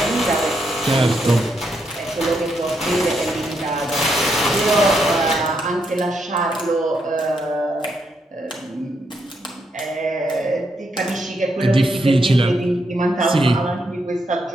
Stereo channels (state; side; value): normal; both; correlation 0.79